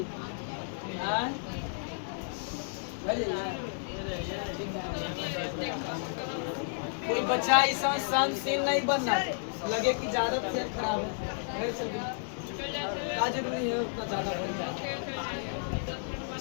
कोई बच्चा इस समय सहनशील नहीं बनना, लगे कि ज्यादा तबीयत खराब है, घर चल गई। क्या जरूरी है उतना ज्यादा बोलना?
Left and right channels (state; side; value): silent; right; digital silence